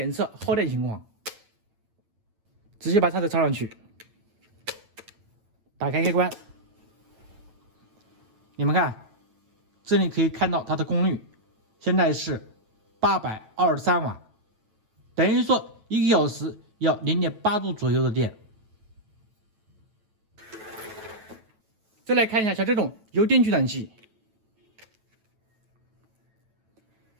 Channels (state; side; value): late; left; 9.0 ms